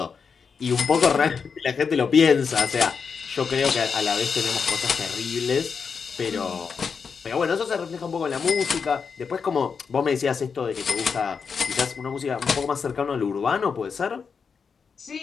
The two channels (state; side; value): quieter; right; 5.9 dB